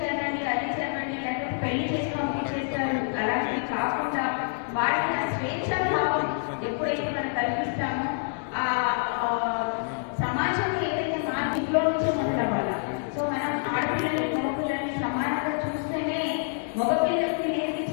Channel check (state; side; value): silent; right; digital silence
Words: చేయండి అది చేయండి లేకపోతే పెళ్లి చేసి పంపించేస్తారు. అలాంటివి కాకుండా వాళ్ళకి ఆ స్వేచ్ఛా భావం ఎప్పుడైతే మనం కల్పిస్తామో ఆ సమాజంలో ఏదైతే మార్పు ఇంట్లో నుంచే మొదలవ్వాలి. సో మనం ఆడపిల్లలని మగపిల్లల్ని సమానంగా చూస్తేనే మగపిల్లలకి